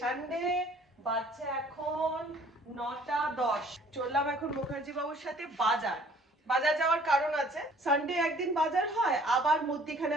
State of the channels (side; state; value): both; normal; correlation 0.55